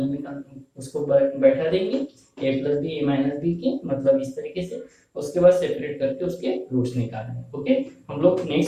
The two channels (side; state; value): both; identical; correlation 1.00